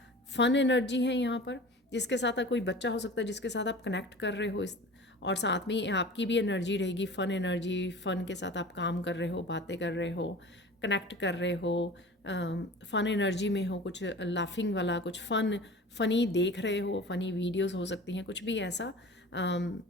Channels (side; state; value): both; normal; correlation 0.39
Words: फन एनर्जी है यहाँ पर, जिसके साथ कोई बच्चा हो सकता है जिसके साथ आप कनेक्ट कर रहे हो, इस और साथ में आपकी भी एनर्जी रहेगी, फ़न एनर्जी। फ़न के साथ आप काम कर रहे हो, बातें कर रहे हो, कनेक्ट कर रहे हो, फ़न एनर्जी में हो, कुछ लाफिंग वाला, कुछ फ़नी देख रहे हो, फ़नी वीडियोस हो सकती हैं, कुछ भी ऐसा